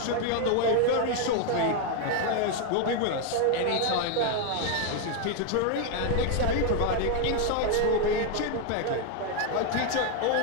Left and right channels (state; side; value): different; both; correlation 0.00